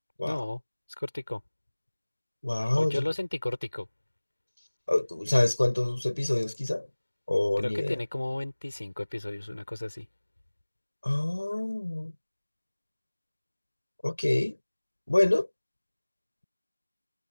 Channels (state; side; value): inverted; both; correlation -1.00